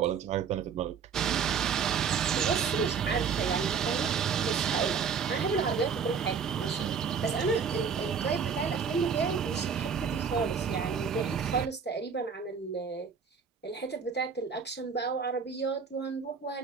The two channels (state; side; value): quieter; left; 6.3 dB